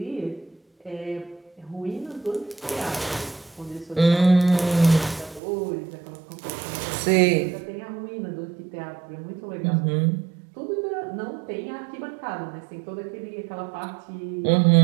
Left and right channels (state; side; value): drops out; left; at 5.4 s